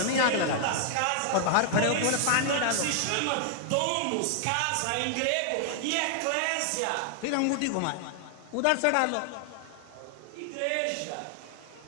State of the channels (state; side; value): different; both; correlation 0.00